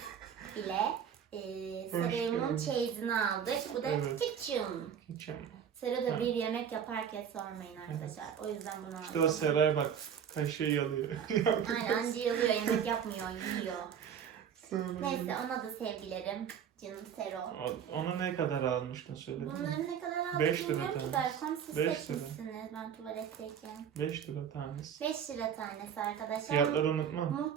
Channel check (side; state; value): left; quieter; 8.2 dB